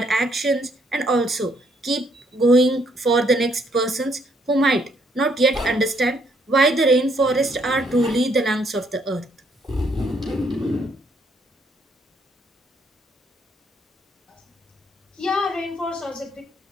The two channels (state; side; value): normal; both; correlation 0.70